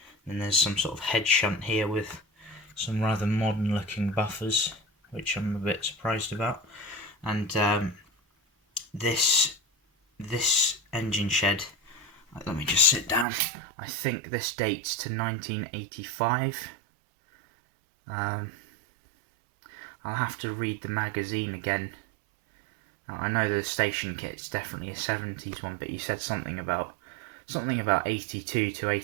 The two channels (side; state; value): left; drops out; at 13.2 s